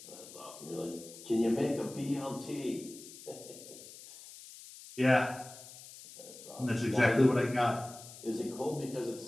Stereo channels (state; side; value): noise; left; hiss, 16 dB below the sound